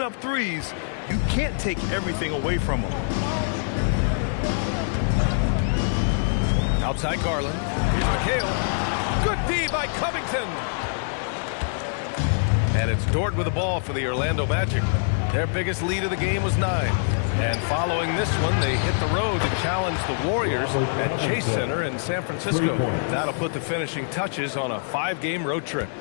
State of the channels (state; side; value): silent; right; digital silence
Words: up threes, you can't take everything away from him. Outside Garland. Here's McHale. Good D by Covington. And it's Dort with the ball for the Orlando Magic. Their biggest lead of the game was 9. And following this one, they hit the road to challenge the Warriors at Chase Center in San Francisco. That'll put the finishing touches on a 5-game road trip.